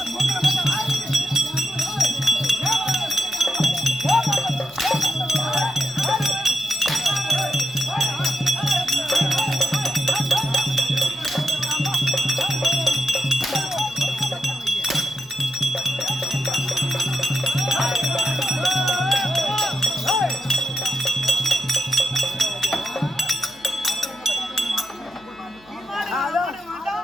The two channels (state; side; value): noise; left; hum, 28 dB below the sound